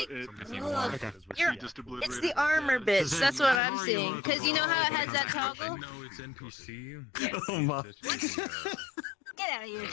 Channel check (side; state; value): right; drops out; at 3.6 s